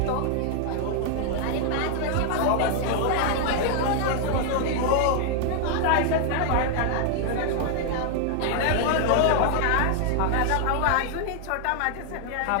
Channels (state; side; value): different; both; correlation 0.00